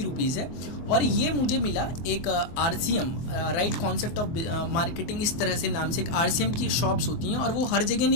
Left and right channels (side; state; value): right; late; 24 ms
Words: रुपीज़ है। और ये मुझे मिला एक RCM, right concept of marketing, इस तरह से नाम से एक RCM की शॉप्स होती हैं, और वो हर जगह